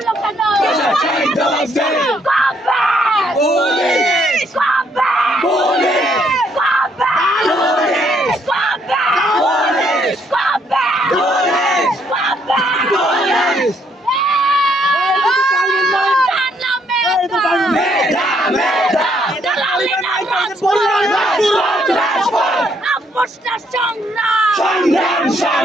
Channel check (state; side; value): normal; both; correlation 0.70